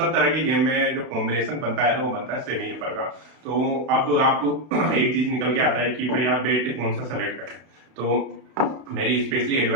तरह के गेम में जो कॉम्बिनेशन बनता है ना, वो बनता है सेमी अपर का। तो अब आप एक चीज निकल के आता है कि भाई आप बैट कौन सा सेलेक्ट करें। तो मेरी स्पेशली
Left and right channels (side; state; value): left; late; 32 ms